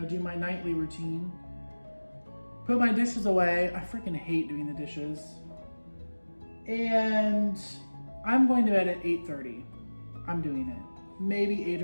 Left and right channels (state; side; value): inverted; both; correlation -1.00